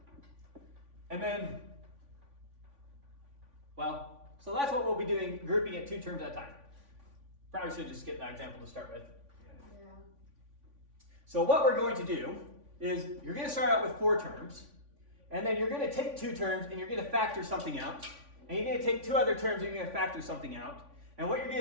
And then, well, so that's what we'll be doing, grouping it 2 terms at a time. Probably should just skip that example to start with. Yeah. Yeah. So what we're going to do is you're going to start out with 4 terms, and then you're going to take 2 terms and you're going to factor something out, and you're going to take 2 other terms and you're going to factor something out. And what you're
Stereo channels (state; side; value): late; left; 3.5 ms